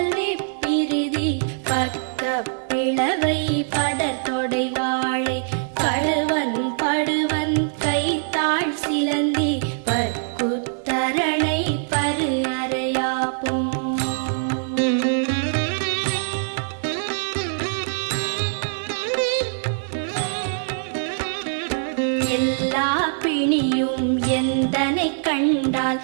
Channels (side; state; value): left; silent; digital silence